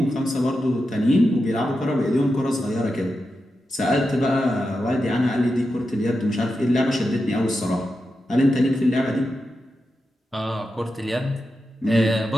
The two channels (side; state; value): both; normal; correlation 0.89